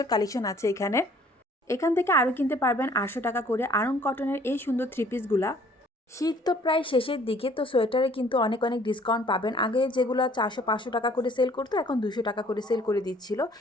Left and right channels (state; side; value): normal; both; correlation 0.57